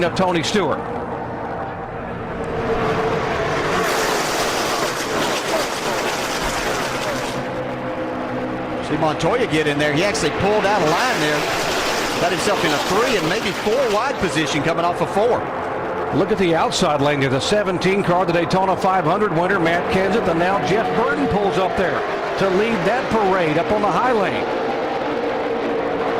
of Tony Stewart. See Montoya get in there. He actually pulled out a line there. Got himself in a 3 and maybe 4 wide position coming off of 4. Look at the outside lane. There's a 17 car, the Daytona 500 winner, Matt Kenseth, and now Jeff Burton pulls up there to lead that parade up on the high lane.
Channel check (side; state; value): both; identical; correlation 1.00